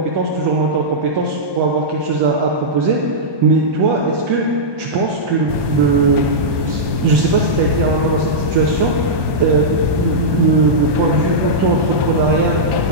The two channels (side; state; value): left; late; 1.2 ms